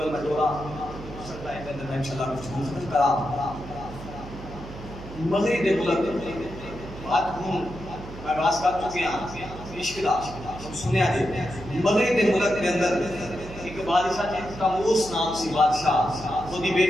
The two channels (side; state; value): right; noise; hum, 13 dB below the sound